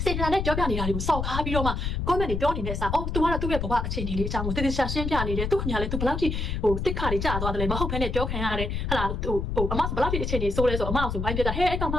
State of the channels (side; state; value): left; noise; rumble, 2 dB below the sound